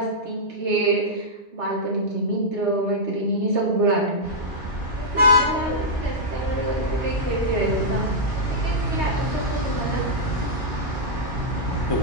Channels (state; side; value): normal; both; correlation -0.08